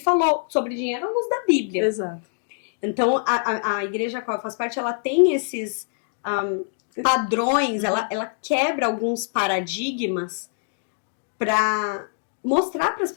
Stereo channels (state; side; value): silent; right; digital silence